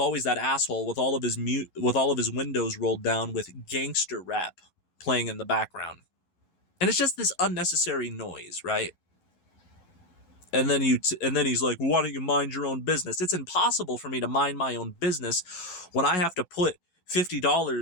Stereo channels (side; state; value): right; late; 12 ms